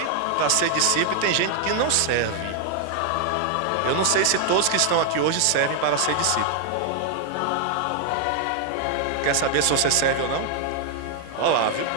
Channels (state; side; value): different; both; correlation 0.00